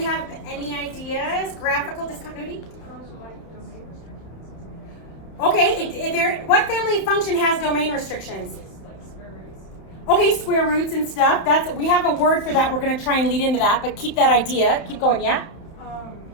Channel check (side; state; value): right; late; 30 ms